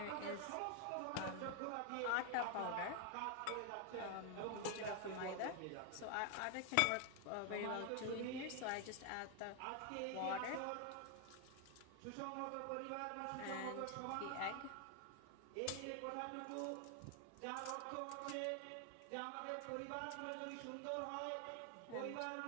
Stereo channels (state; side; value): different; both; correlation 0.00